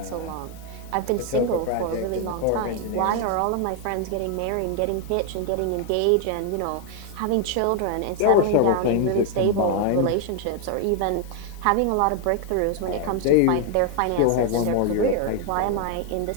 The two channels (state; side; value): different; both; correlation 0.00